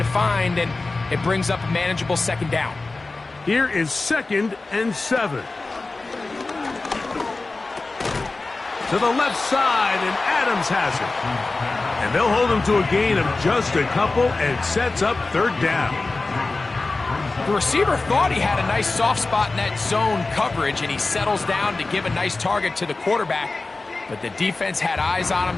find, and it brings up a manageable 2nd down. Here is 2nd and 7. To the left side, and Adams has it. And they'll hold him to a gain of just a couple, and sets up 3rd down. The receiver thought he had a nice soft spot in that zone coverage, and he settles down to give a nice target to the quarterback. But the defense had eyes on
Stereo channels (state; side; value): quieter; right; 3.5 dB